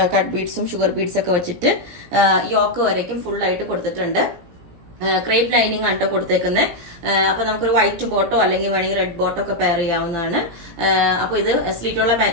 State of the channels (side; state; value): left; late; 17 ms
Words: കട്ട് ബീഡ്സും ഷുഗർ ബീഡ്സ് ഒക്കെ വെച്ചിട്ട് യോക്ക് വരയ്ക്കും ഫുൾ ആയിട്ട് കൊടുത്തിട്ടുണ്ട്. ക്രേപ്പ് ലൈനിങ് ആണ് കേട്ടോ കൊടുത്തേക്കുന്നത്. അപ്പൊ നമുക്കൊരു വൈറ്റ് ബോട്ടോ അല്ലെങ്കിൽ വേണമെങ്കിൽ റെഡ് ബോട്ടോ ഒക്കെ പെയർ ചെയ്യാവുന്നതാണ്. അപ്പൊ ഇത് സ്ലിറ്റുള്ള